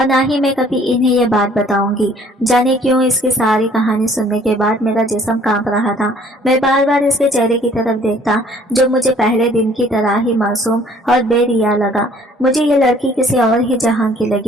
ना ही मैं कभी इन्हें ये बात बताऊंगी। जाने क्यों इसकी सारी कहानी सुनने के बाद मेरा जिस्म कांप रहा था। मैं बार बार इसके चेहरे की तरफ देखता, जो मुझे पहले दिन की तरह ही मासूम और बेरिया लगा। मुझे ये लड़की किसी और ही जहां की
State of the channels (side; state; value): both; normal; correlation 0.57